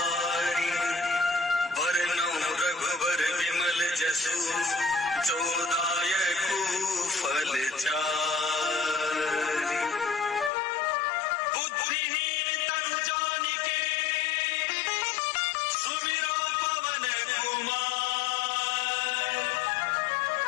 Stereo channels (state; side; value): drops out; right; at 10.5 s